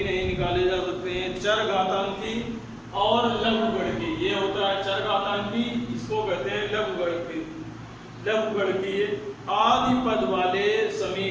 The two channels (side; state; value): both; identical; correlation 1.00